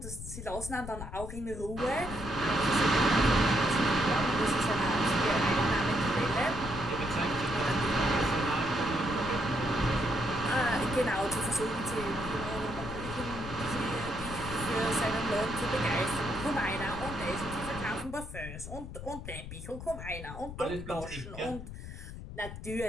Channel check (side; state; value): left; noise; rumble, 10 dB below the sound